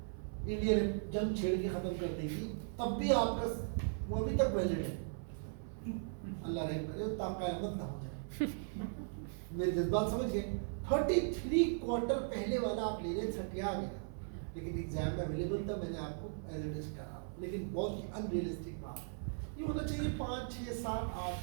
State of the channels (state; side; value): silent; left; 52 dB below the other